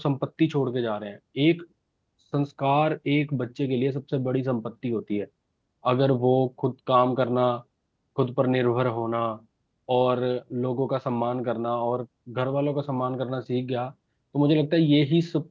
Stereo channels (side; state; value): both; identical; correlation 1.00